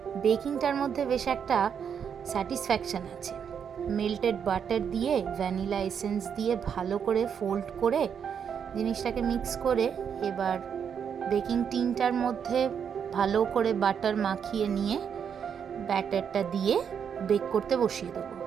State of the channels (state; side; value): quieter; left; 7.5 dB